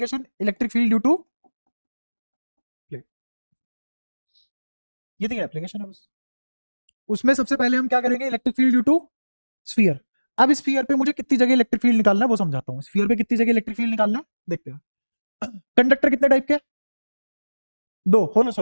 electric field due to plate. ये तीन एप्लीकेशन है बस। उसमें सबसे पहले हम क्या करेंगे? Electric field due to sphere. अब स्फीयर पे मुझे कितनी जगह इलेक्ट्रिक फील्ड निकालना है वो समझाता हूँ। स्फीयर पे कितनी जगह इलेक्ट्रिक फील्ड निकालना है देखते हैं। कंडक्टर कितने टाइप के? दो, होलो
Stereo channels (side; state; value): both; inverted; correlation -1.00